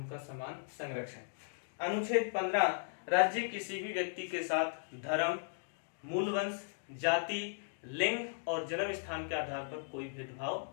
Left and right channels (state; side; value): silent; right; digital silence